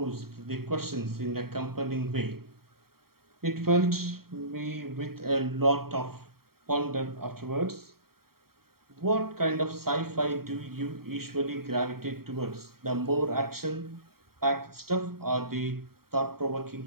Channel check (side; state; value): left; late; 0.94 ms